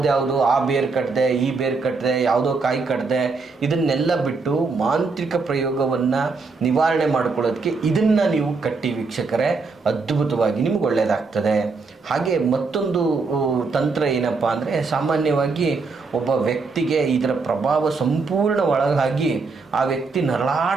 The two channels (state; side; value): quieter; left; 4.3 dB